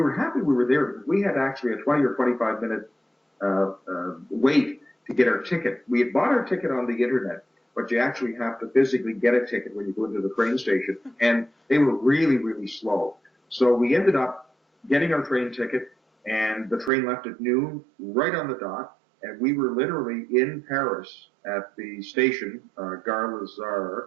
were happy we were there because we had actually a 20 or 25 minute wait to get our ticket. We had bought our ticket on the internet, but you actually have to physically get a ticket when you go into the train station, and they were really, really slow. So we ended up getting our train ticket, and the train left at noon, right on the dot, and we were literally in Paris at the station, Gare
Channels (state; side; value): drops out; left; at 16.9 s